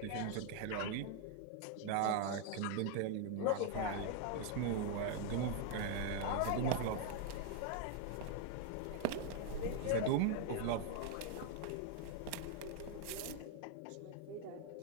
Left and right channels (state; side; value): different; both; correlation 0.00